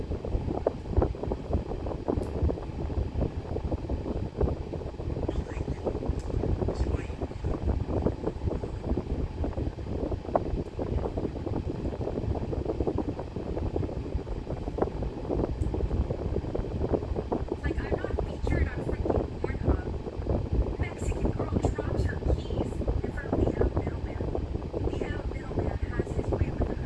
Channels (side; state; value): both; identical; correlation 1.00